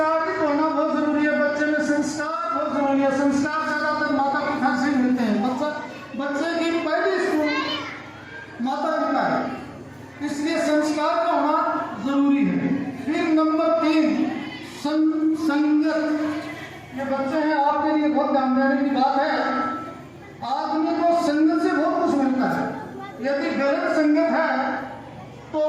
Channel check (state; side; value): identical; both; correlation 1.00